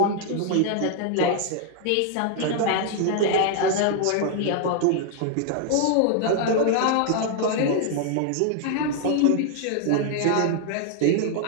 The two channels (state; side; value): different; both; correlation 0.00